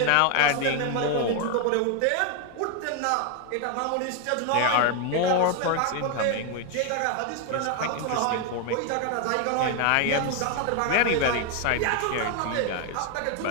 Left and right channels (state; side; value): different; both; correlation 0.01